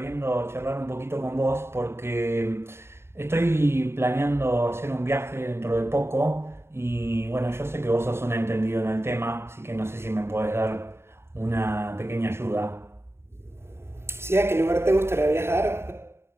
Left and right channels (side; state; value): left; late; 0.12 ms